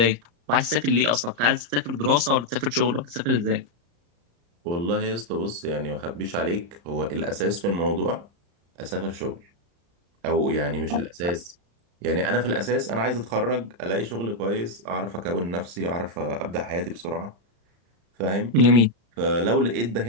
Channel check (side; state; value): left; late; 35 ms